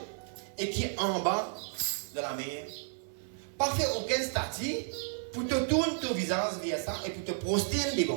et qui est en bas de la mer. Pas faire aucun statut pour te tourner ton visage vers ça et pour te prosterner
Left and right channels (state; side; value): silent; left; 56 dB below the other